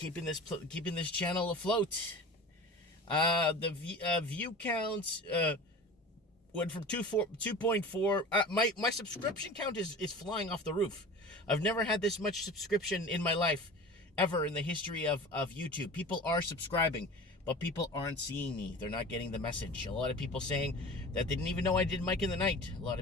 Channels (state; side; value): normal; both; correlation 0.37